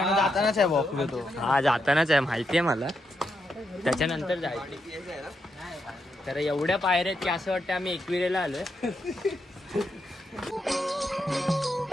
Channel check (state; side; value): normal; both; correlation 0.83